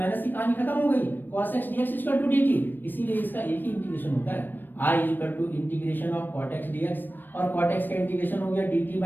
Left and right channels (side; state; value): right; late; 0.093 ms